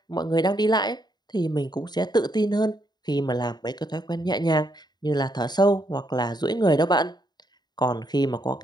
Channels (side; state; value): right; late; 0.20 ms